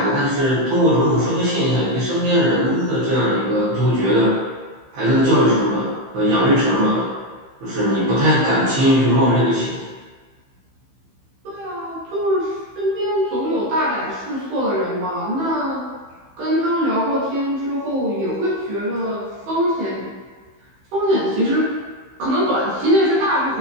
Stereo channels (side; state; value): left; late; 15 ms